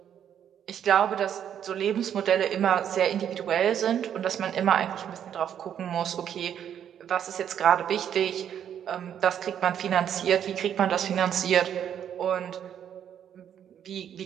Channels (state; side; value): quieter; left; 9.3 dB